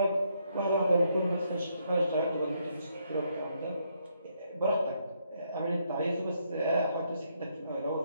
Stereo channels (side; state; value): both; inverted; correlation -0.74